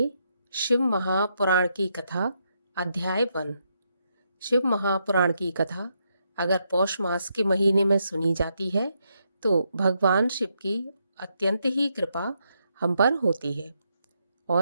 शिव महापुराण की कथा। अध्याय 1। शिव महापुराण की कथा अगर पौष मास के महीने में सुनी जाती है तो भगवान शिव की अत्यंत ही कृपा हम पर होती है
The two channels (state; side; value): inverted; both; correlation -0.79